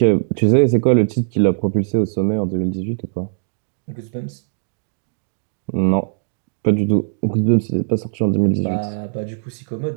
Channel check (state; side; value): silent; left; digital silence